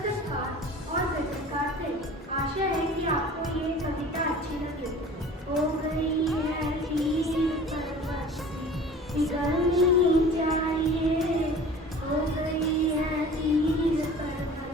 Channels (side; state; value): both; normal; correlation 0.43